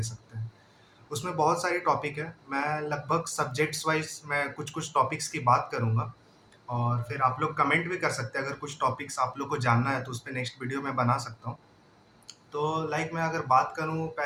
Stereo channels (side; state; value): both; identical; correlation 1.00